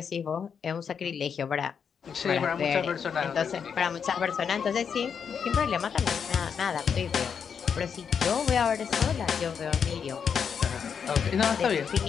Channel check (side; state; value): right; quieter; 6.9 dB